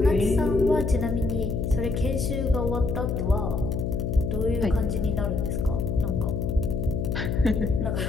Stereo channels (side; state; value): left; noise; hum, 1 dB below the sound